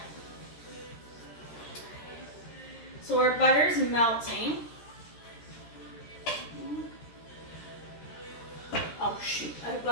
So our butter's melting. Oh shoot, I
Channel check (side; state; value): right; late; 13 ms